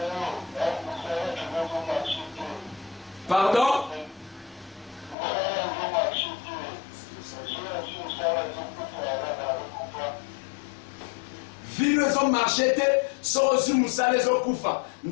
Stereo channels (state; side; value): drops out; right; at 5.2 s